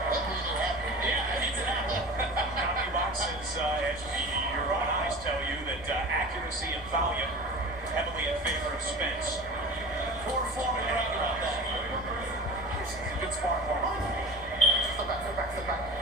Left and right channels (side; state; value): right; noise; rumble, 18 dB below the sound